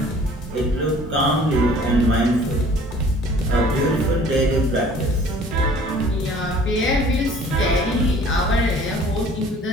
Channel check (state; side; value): normal; both; correlation 0.51